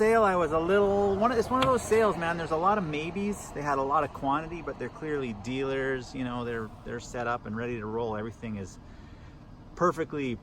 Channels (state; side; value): identical; both; correlation 1.00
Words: I was a little, it's one of those sales, man. There's a lot of maybes. They had a lot of quantity, but they're clearly dealers. You know, they're set up and ready to roll. Everything is perfectly